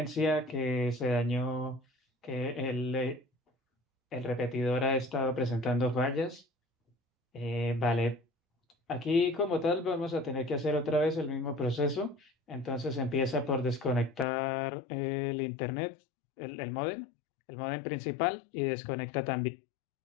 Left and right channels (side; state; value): right; drops out; at 14.2 s